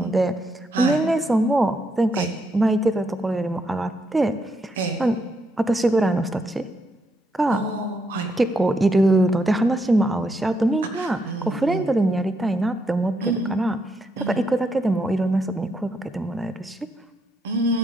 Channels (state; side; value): normal; both; correlation 0.78